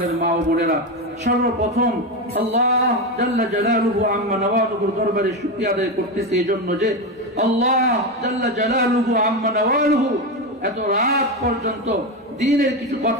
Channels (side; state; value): both; normal; correlation 0.14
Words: মা ও বোনেরা সর্বপ্রথম আল্লাহ জাল্লা জালালুহু আম্মা নওয়ালুহুর দরবারে শুকরিয়া আদায় করতেছি এজন্য যে আল্লাহ জাল্লা জালালুহু আম্মা নওয়ালুহু এত রাত পর্যন্ত দ্বীনের কিছু